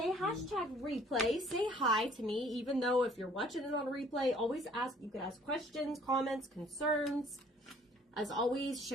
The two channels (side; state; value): both; normal; correlation 0.57